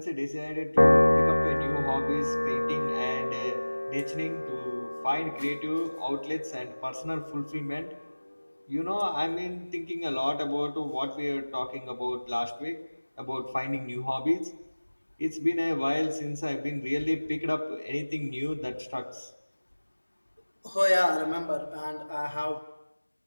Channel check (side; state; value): both; inverted; correlation -1.00